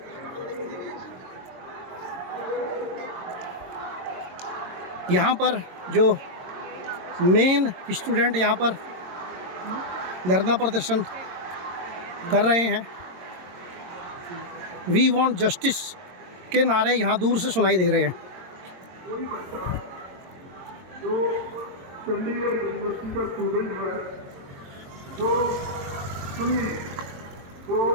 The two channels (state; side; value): late; left; 22 ms